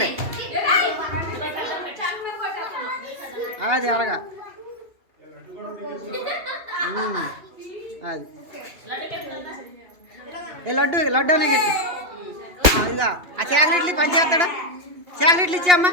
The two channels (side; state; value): left; late; 2.8 ms